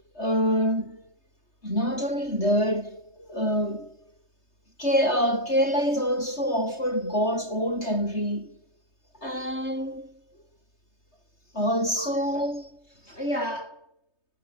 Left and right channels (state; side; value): late; right; 3.2 ms